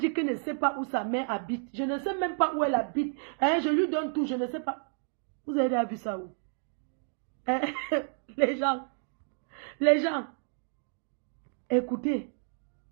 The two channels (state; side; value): silent; left; 56 dB below the other